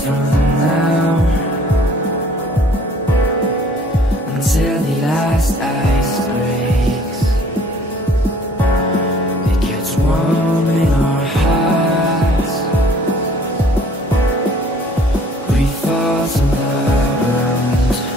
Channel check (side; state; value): both; normal; correlation 0.55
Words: from now until the last ice breaks. It gets warm in our hearts, grief falls on the ground.